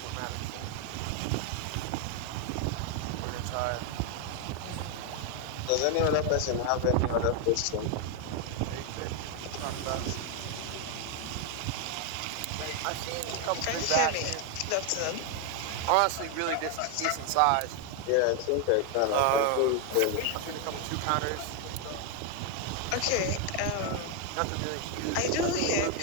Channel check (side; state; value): both; different; correlation 0.01